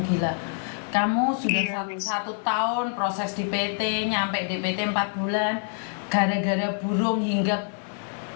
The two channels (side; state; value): right; silent; 61 dB below the other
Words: gila. Kamu sudah Iya, Miss. satu tahun proses di PT, nyampe di PT 4 bulan, gara-gara burung hinggap